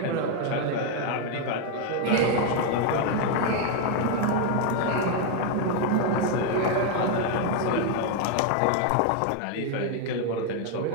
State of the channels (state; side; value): different; both; correlation 0.01